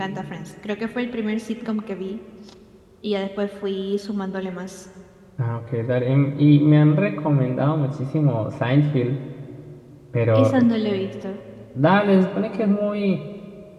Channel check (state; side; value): identical; both; correlation 1.00